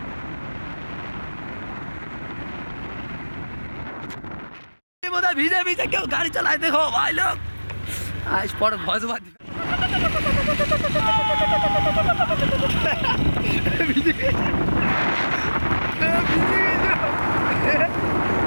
ভিজে ভিজে কেউ গাড়ি চালায় দেখো ভাই লোক আজ পর ভজ বাদ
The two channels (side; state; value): both; inverted; correlation -1.00